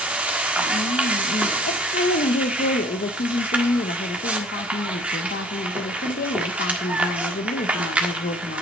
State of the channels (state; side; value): normal; both; correlation 0.52